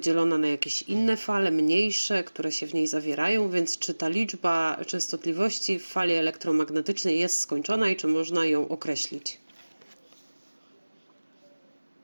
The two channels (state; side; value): inverted; both; correlation -1.00